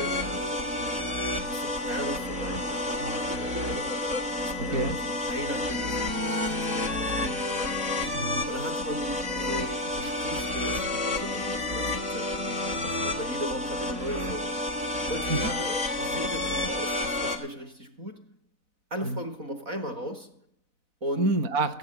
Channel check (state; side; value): late; left; 4.0 ms